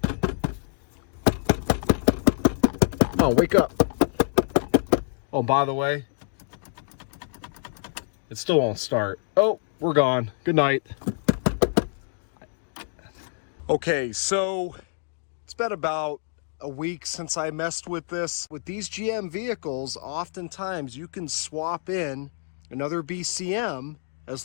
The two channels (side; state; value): right; silent; digital silence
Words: Come on, wake up. Oh, by the way, it still won't start. Oh, we're gone. Good night. Okay, so it's been about a week since I messed with this. With these GM vehicles, oftentimes you can swap in another BCM as